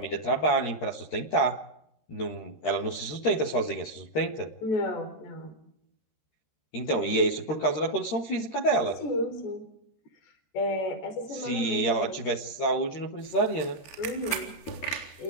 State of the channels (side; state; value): right; late; 13 ms